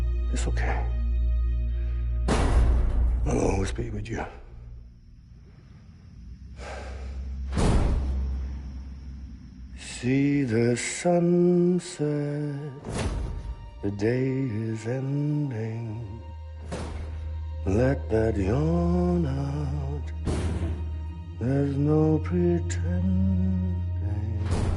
It's okay. I'll always be with you. See the sunset. The day is ending. Let that yawn out. There's no pretending.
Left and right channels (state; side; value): identical; both; correlation 1.00